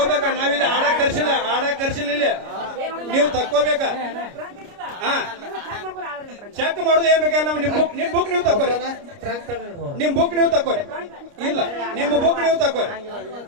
ನಾವಿಲ್ಲಿ ಆಡಕ್ ಕರ್ಸಿಲ್ಲ ಇಲ್ಲಿ. ನೀವು ತಕ್ಕೋಬೇಕ. ಚೆಕ್ ಮಾಡುದು ಏನ್ ಬೇಕಲ್ಲ. ನಿಮ್ ಬುಕ್ ನೀವು ತಕ್ಕೋರಿ. ನಿಮ್ ಬುಕ್ ನೀವು ತಕ್ಕೋರಿ. ಇಲ್ಲ, ನಿಮ್ಮ ಬುಕ್ ನೀವು ತಕ್ಕೋರಿ.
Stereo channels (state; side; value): late; left; 29 ms